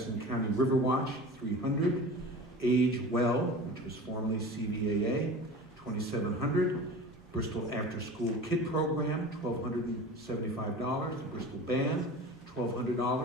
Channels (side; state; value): both; normal; correlation 0.35